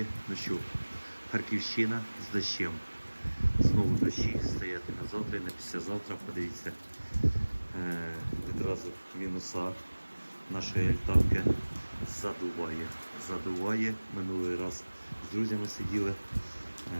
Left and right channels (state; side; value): inverted; both; correlation -1.00